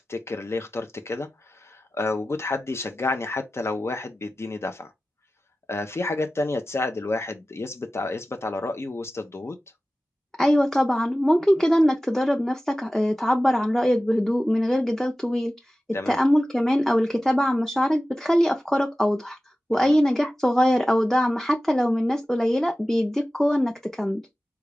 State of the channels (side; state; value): both; normal; correlation 0.95